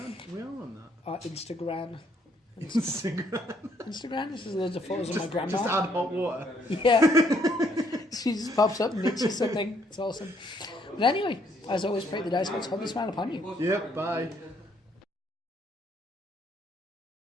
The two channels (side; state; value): both; normal; correlation 0.68